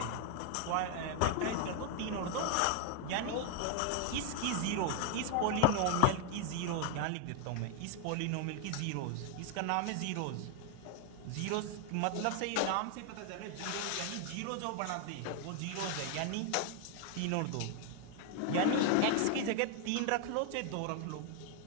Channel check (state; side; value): different; both; correlation 0.00